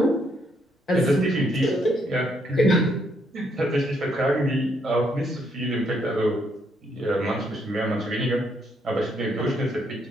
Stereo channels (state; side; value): normal; both; correlation 0.73